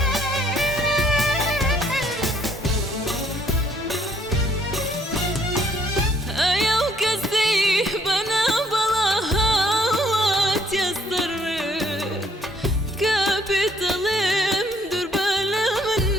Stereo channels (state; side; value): normal; both; correlation 0.66